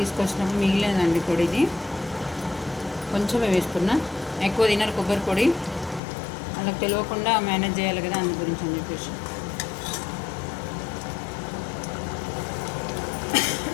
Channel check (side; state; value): right; drops out; at 6.0 s